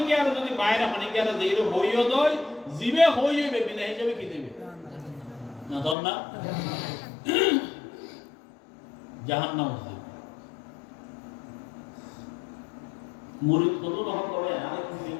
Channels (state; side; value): drops out; right; at 6.0 s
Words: আর যদি বাইরে হনিকে আর যেইরো হইও দয় জিবে হইবে বিনা হিসাবে কি দেবে না দন না জাহান্নাম আছে মুরিদ কত রকম করে আরে কি